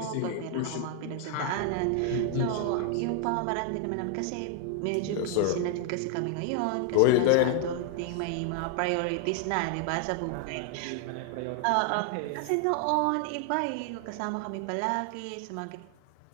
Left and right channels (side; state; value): both; different; correlation 0.00